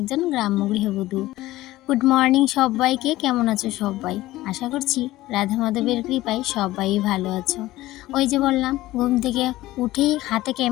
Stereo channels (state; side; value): quieter; right; 16.8 dB